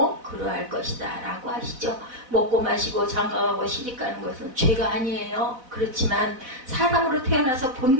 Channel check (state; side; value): late; left; 4.0 ms